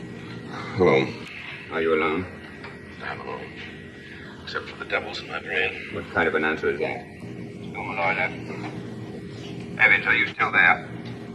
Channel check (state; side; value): identical; both; correlation 1.00